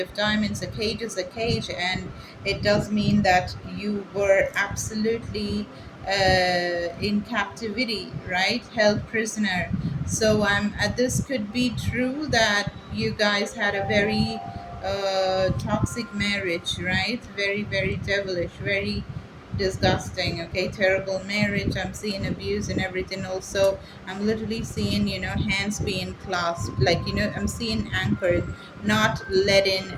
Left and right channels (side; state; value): both; identical; correlation 1.00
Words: of diamonds. A cage is a cage, and it does mean that you were absolutely in captivity, right? Held prisoner. So this could be true that you guys had a very toxic marriage, right? Very, very devilish, very disgusting. Okay, terrible marriage. I'm seeing abuse and everything. Also, I'm literally seeing, hands being clasped, like, I'm seeing anchored, not letting